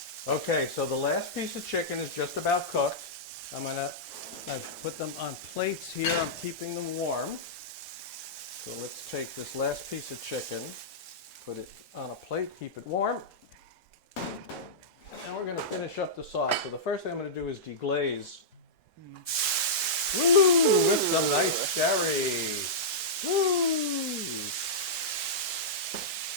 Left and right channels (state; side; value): normal; both; correlation -0.13